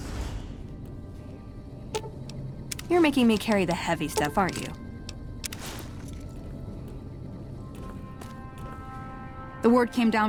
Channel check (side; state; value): both; identical; correlation 1.00